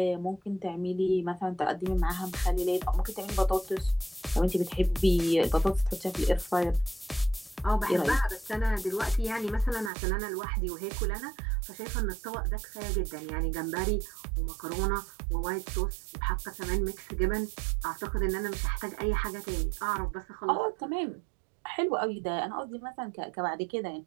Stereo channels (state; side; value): drops out; left; at 9.9 s